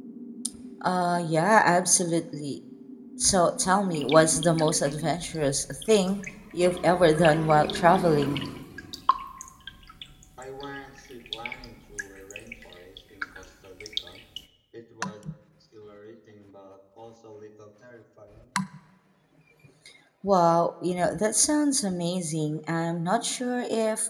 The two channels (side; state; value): both; identical; correlation 1.00